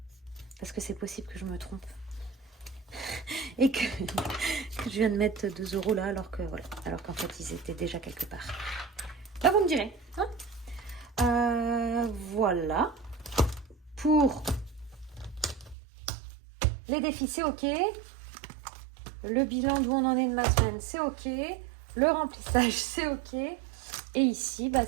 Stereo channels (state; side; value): drops out; left; at 15.8 s